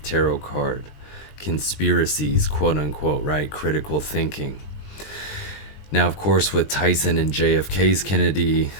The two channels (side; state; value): right; late; 20 ms